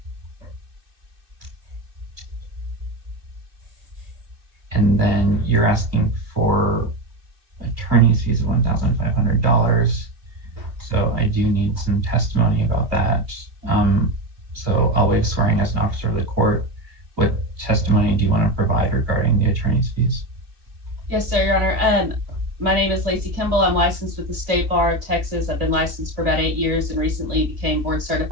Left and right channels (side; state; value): left; late; 2.6 ms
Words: And then you're asking for attorney's fees of $1,500. So I do need some testimony about that. So I'll waive swearing as an officer of the court. What testimony do you want to provide regarding the attorney's fees? Yes, sir, Your Honor. My name is Lacey Kimball. I'm licensed with the State Bar of Texas. I've been licensed for about 8 years and recently became board